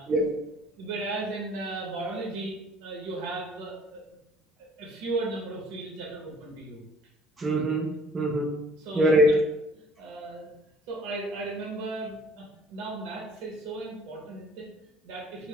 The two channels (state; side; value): normal; both; correlation 0.55